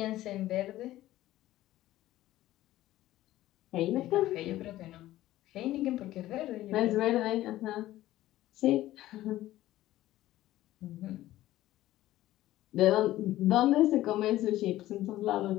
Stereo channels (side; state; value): right; quieter; 15.0 dB